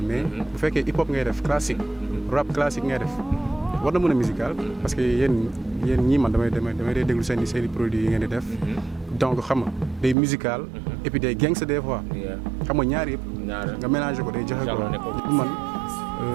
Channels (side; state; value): left; drops out; at 10.2 s